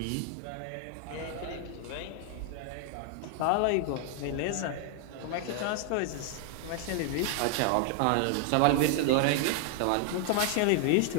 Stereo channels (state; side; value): different; both; correlation 0.00